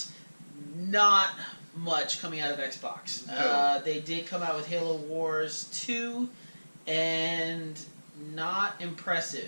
Not much coming out of Xbox. No. They did come out with Halo Wars 2, and not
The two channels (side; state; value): both; inverted; correlation -1.00